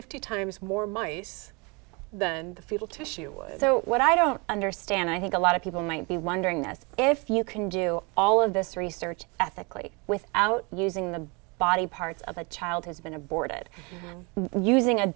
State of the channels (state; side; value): quieter; left; 29.5 dB